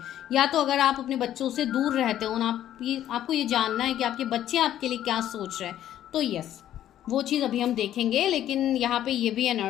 या तो अगर आप अपने बच्चों से दूर रहते हो ना, आपको ये जानना है कि आपके बच्चे आपके लिए क्या सोच रहे हैं, तो यस वो चीज़ अभी हम देखेंगे। लेकिन यहाँ पे ये भी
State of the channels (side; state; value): right; quieter; 11.8 dB